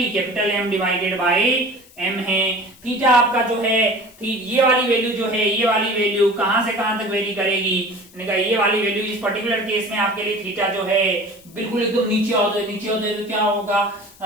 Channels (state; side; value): noise; left; hiss, 25 dB below the sound